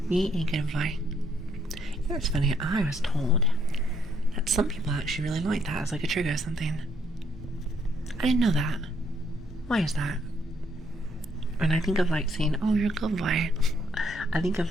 Be a good boy. You know what's funny? I was told that some people actually really like that as like a trigger or something. I didn't know that. Why is that? When I think of like saying, oh, you're a good boy, I think of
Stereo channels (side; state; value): both; normal; correlation 0.70